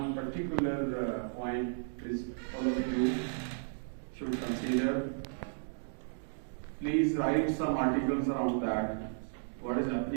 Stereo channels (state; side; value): silent; left; digital silence